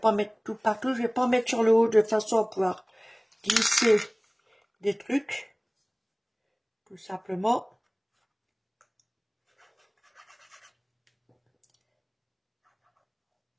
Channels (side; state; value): both; identical; correlation 1.00